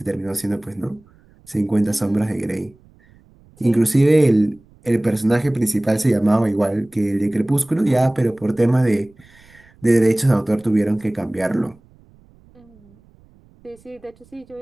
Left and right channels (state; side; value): noise; right; rumble, 29 dB below the sound